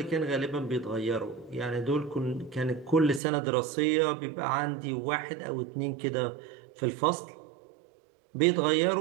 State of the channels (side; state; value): left; drops out; at 3.2 s